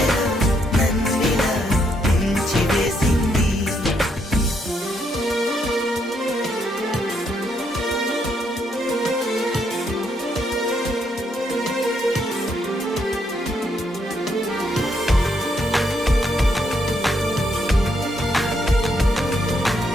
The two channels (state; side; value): normal; both; correlation 0.75